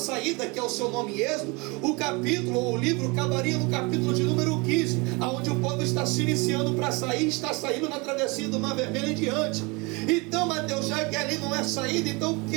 que é o seu nome Êxodo, o capítulo ou o livro acabaria no capítulo de número 15, onde o povo está se iniciando para sair, está saindo na travessia do Mar Vermelho em diante. Então, Mateus, já que ali não é saída, então o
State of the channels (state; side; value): quieter; left; 27.6 dB